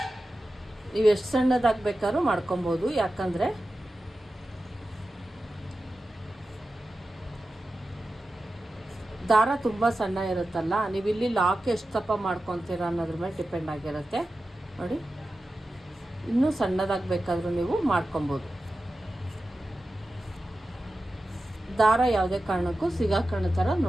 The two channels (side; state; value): both; normal; correlation 0.93